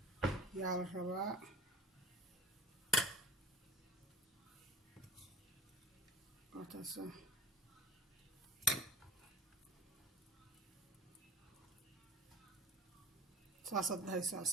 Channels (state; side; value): normal; both; correlation 0.40